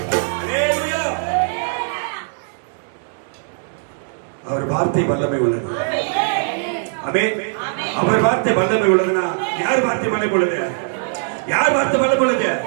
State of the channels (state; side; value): silent; left; digital silence